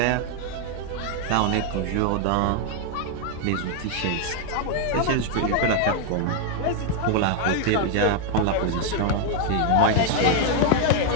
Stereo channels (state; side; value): different; both; correlation 0.00